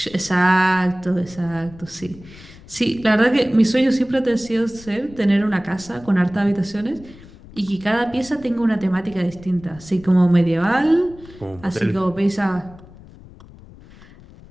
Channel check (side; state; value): left; noise; rumble, 21 dB below the sound